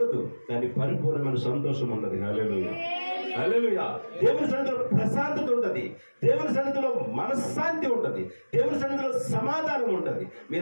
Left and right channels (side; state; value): both; inverted; correlation -1.00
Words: కానీ పరిపూర్ణమైన సంతోషం ఉంటుంది. హల్లెలూయా, హల్లెలూయా. దేవుని సన్నిధిలో ప్రశాంతత ఉంటుంది. దేవుని సన్నిధిలో మనశ్శాంతి ఉంటుంది. దేవుని సన్నిధిలో సమాధానం ఉంటుంది.